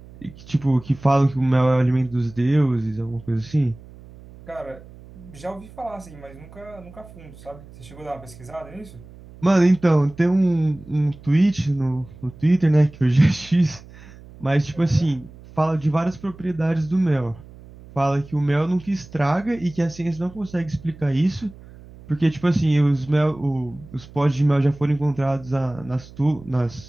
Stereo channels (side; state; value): right; noise; hum, 20 dB below the sound